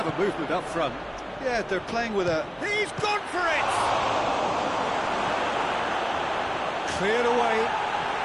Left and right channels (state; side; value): identical; both; correlation 1.00